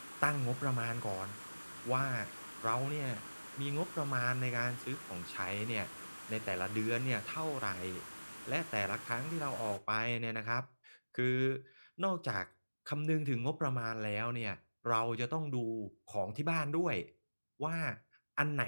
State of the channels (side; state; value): both; inverted; correlation -1.00